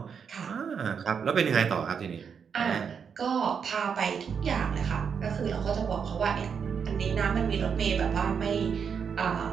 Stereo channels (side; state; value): left; quieter; 6.7 dB